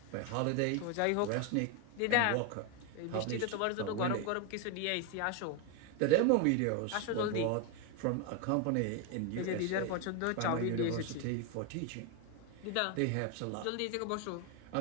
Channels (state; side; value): different; both; correlation 0.01